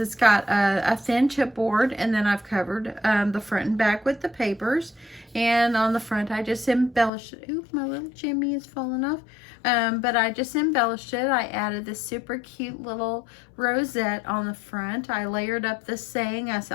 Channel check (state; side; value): drops out; right; at 7.1 s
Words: got a thin chipboard, and then I've covered the front and back with the papers. And on the front, I just embellished it. Oop, my little Jimmy is falling off. But I just embellished it. I added this super cute little rosette on the front. I layered up this saying. I